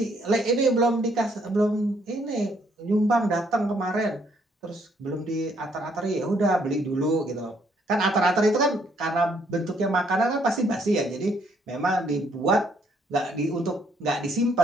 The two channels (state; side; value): normal; both; correlation 0.68